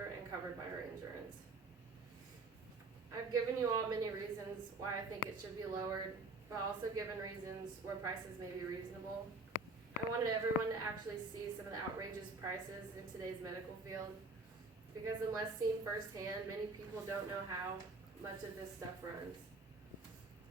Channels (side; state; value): left; quieter; 3.2 dB